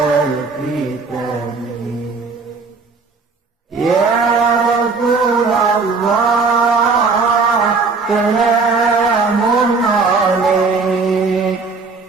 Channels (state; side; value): quieter; left; 4.4 dB